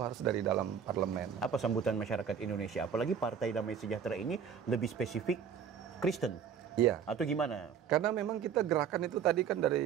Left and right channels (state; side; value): quieter; left; 7.6 dB